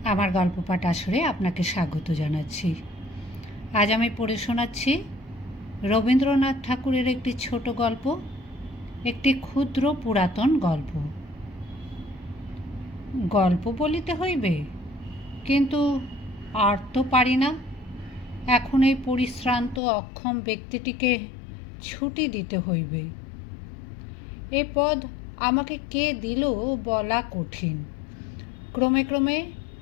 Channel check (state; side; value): drops out; right; at 19.8 s